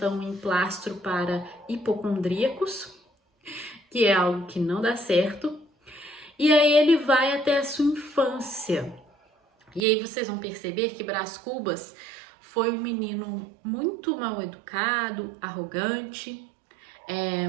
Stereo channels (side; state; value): left; drops out; at 9.9 s